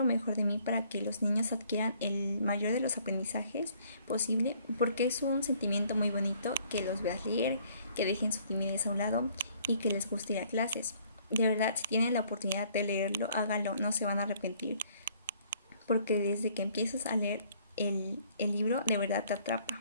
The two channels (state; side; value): inverted; both; correlation -0.61